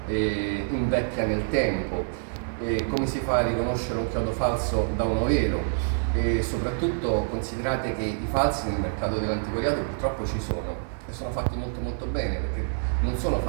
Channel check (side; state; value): left; silent; digital silence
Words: invecchia nel tempo, come si fa a riconoscere un chiodo falso da uno vero. E soprattutto considerate che i falsi nel mercato dell'antiquariato purtroppo ci sono e sono fatti molto molto bene, perché non sono